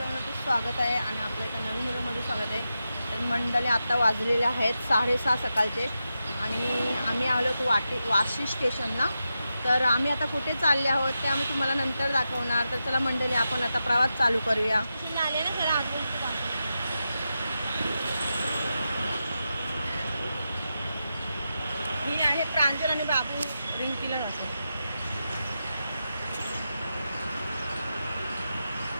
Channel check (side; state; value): both; inverted; correlation -0.89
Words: आहे आणि आपल्या एका नवीन व्हिडिओमध्ये स्वागत आहे. तर मंडळी आता वाजलेले आहेत 6:30 सकाळचे आणि आम्ही आलो होतो वाशी स्टेशनला. तर आम्ही आता कुठे चालले आहोत ते आम्ही तुम्हाला नंतर दाखवणार. तर चला मंडळी, आपण आता प्रवास चालू करूया. ही आहे प्रांजल आणि बाबू रिंकीला नसेल.